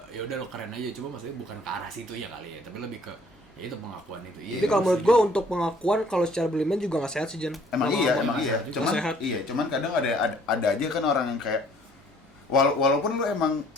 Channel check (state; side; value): normal; both; correlation 0.58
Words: ya udah lo keren aja, cuma maksudnya bukan ke arah situ ya kali ya, tapi lebih ke ya itu pengakuan itu. Iya. Jadi kalau menurut gue untuk pengakuan kalau secara berlebihan juga nggak sehat sih, Jan. Emang Kalau iya, ngomong emang nggak iya. sehat juga. Cuman Sehat. iya, cuman kadang ada aja kan orang yang kayak walaupun lu emang